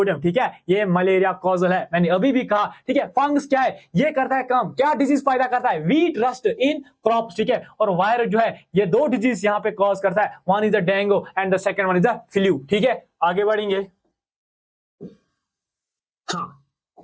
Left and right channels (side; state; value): both; identical; correlation 1.00